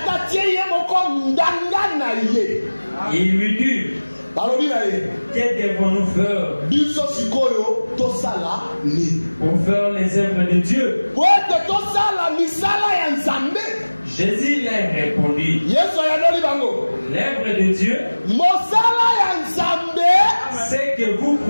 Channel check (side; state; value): both; inverted; correlation -1.00